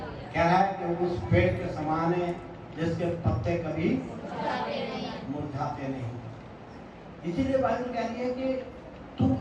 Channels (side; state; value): both; identical; correlation 1.00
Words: कह रहा है कि उस पेड़ के समान है जिसके पत्ते कभी मुरझाते नहीं। इसीलिए बाइबल कह रही है कि तुम